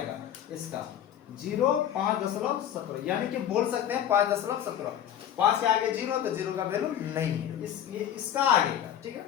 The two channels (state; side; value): quieter; right; 10.2 dB